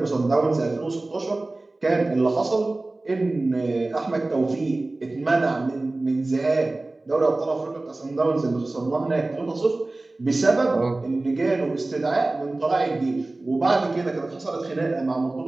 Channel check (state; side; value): quieter; left; 3.0 dB